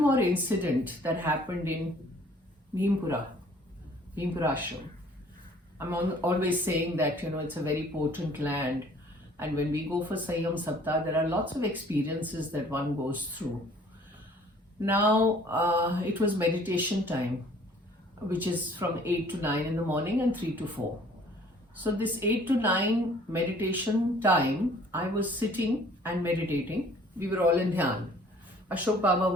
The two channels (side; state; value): both; normal; correlation 0.55